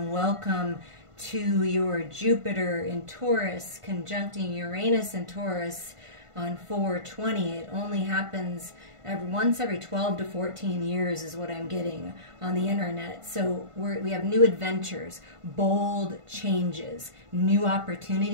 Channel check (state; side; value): late; left; 1.5 ms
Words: welcome to your Jupiter in Taurus conjuncting Uranus in Taurus on 4/20. It only happens once every 12 to 14 years is what I'm getting on the internet. So we have new adventures, bold changes, new